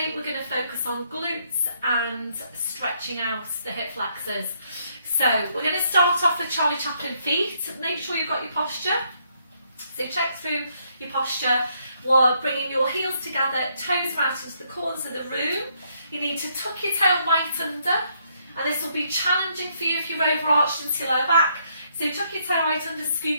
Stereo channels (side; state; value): both; inverted; correlation -0.72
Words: we're going to focus on glutes and stretching out the hip flexors. So we're going to start off with Charlie Chaplin feet. Make sure you've got your posture. So check through your posture while bringing your heels together, toes out into the corners of the room. You need to tuck your tail right under, and this will be challenging for you if you're overarched into your lower back. So tuck your tail right under,